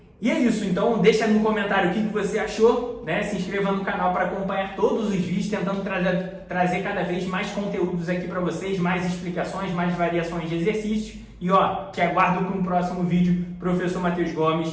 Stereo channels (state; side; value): identical; both; correlation 1.00